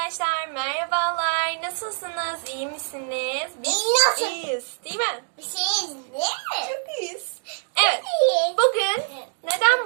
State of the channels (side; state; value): left; silent; digital silence